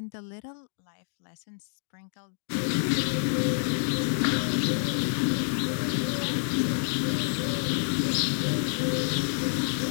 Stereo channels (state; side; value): silent; right; digital silence